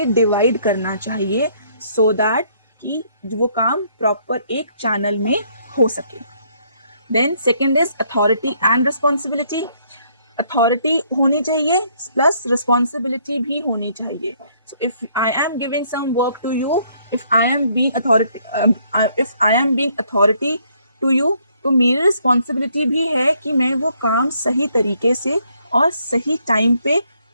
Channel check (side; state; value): both; inverted; correlation -0.67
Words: डिवाइड करना चाहिए, सो दैट कि वो काम प्रॉपर एक चैनल में हो सके। Then second is authority and responsibility. Authority होनी चाहिए प्लस रिस्पॉन्सिबिलिटी भी होनी चाहिए। So if I am giving some work to you, if I am being authority to you, तो मेरी रिस्पॉन्सिबिलिटी भी है कि मैं वो काम सही तरीके से और सही टाइम पे